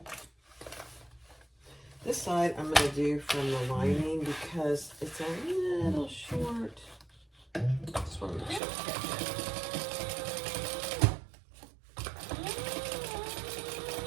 This side I'm going to do from the lining because it's a little short. Just want to make sure it's okay.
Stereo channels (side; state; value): left; drops out; at 8.6 s